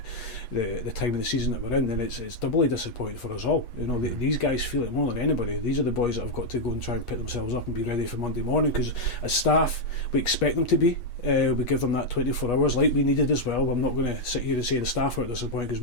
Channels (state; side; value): late; right; 8.3 ms